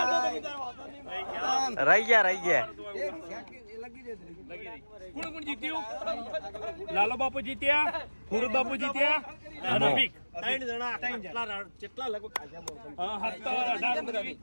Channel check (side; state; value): both; inverted; correlation -1.00